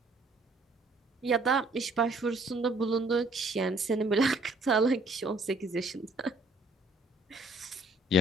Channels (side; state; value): both; normal; correlation 0.61